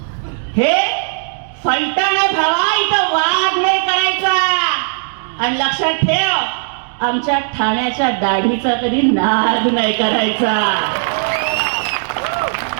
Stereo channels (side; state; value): left; silent; digital silence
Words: हे फलटण आहे भावा, इथं वाद नाही करायचा. आणि लक्षात ठेव, आमच्या ठाण्याच्या दाढीचा कधी नाद नाही करायचा.